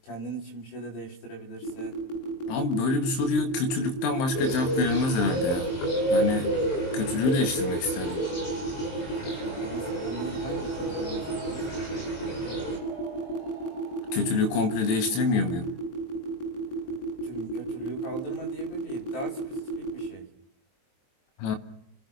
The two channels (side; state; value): right; late; 23 ms